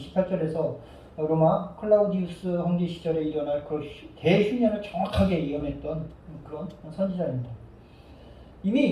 로마 클라우디우스 황제 시절에 일어날 그 대흉년을 정확하게 예언했던 그런 선지자입니다.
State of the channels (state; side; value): identical; both; correlation 1.00